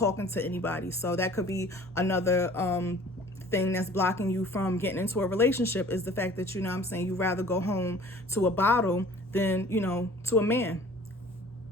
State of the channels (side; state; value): both; normal; correlation 0.49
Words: to anybody. So that could be another thing that's blocking you from getting into a relationship, is the fact that, you rather go home to a bottle than, to a man.